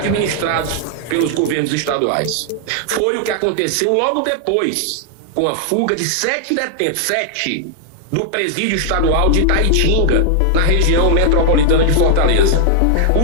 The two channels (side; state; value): both; different; correlation 0.00